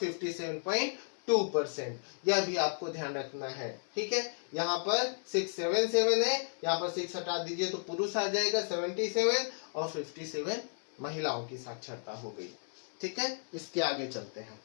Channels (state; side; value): silent; right; 55 dB below the other